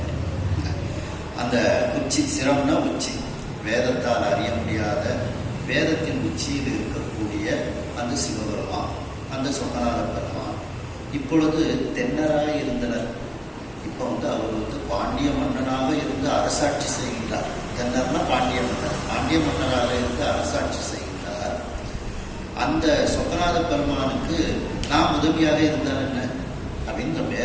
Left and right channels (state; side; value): identical; both; correlation 1.00